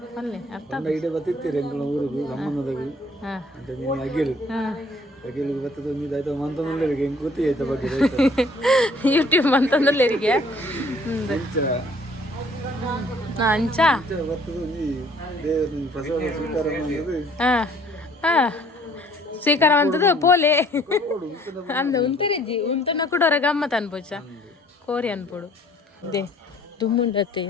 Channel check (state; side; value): normal; both; correlation 0.57